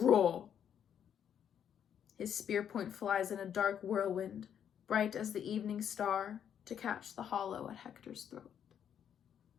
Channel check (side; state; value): right; quieter; 8.8 dB